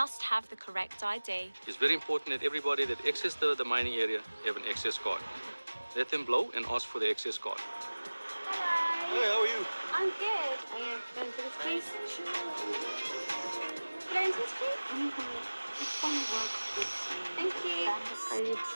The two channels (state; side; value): inverted; both; correlation -1.00